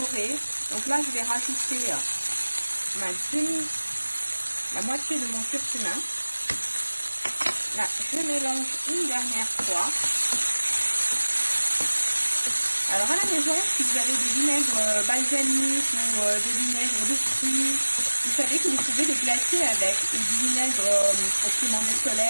Donc là je vais rajouter la moitié de mon curcuma. Là je mélange une dernière fois. Alors à la maison, si vous avez des vinaigres balsamiques ou des vinaigres de fruits, vous savez que vous pouvez les glacer avec, ou du vinaigre au piment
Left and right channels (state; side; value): inverted; both; correlation -1.00